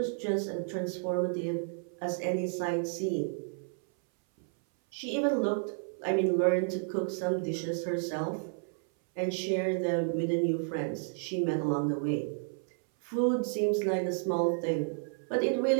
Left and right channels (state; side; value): silent; left; 57 dB below the other